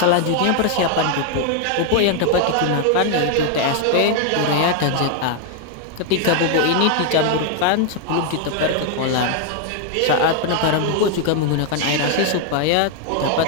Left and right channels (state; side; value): different; both; correlation 0.01